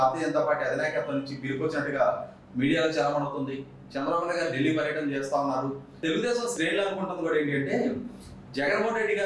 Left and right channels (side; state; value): both; identical; correlation 1.00